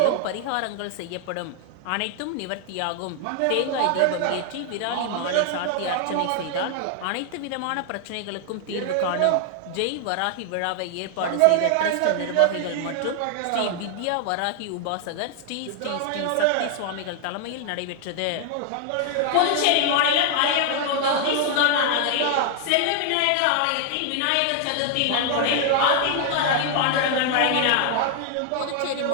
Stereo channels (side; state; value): both; different; correlation 0.00